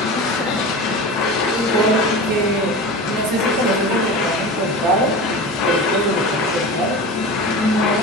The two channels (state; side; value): normal; both; correlation 0.30